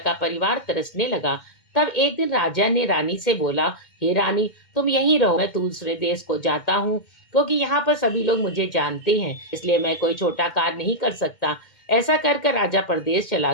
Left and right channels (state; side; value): late; right; 2.1 ms